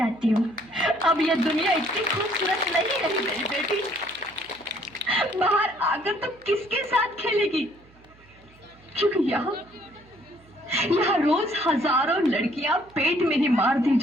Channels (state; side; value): noise; right; hum, 27 dB below the sound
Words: हूँ। अब ये दुनिया इतनी खूबसूरत नहीं रही मेरी बेटी। बाहर आकर तो किसके साथ खेलेगी? क्योंकि यहाँ रोज हजारों लड़कियां पेट में ही मार दी